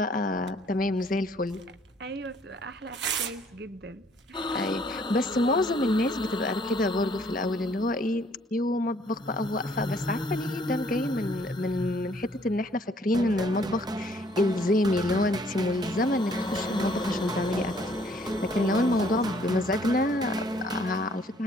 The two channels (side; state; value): both; normal; correlation 0.62